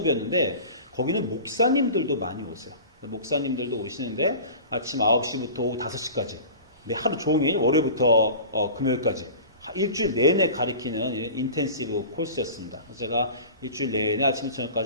거기는 목사님들도 많이 오세요. 목사님들도 오시는데 아침 9시부터 오후 5시까지 하루 종일 월요일부터 금요일까지 일주일 내내 가르치는 인텐시브 코र्स였습니다. 제가 일주일 내내 아침부터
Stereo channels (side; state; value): both; inverted; correlation -0.37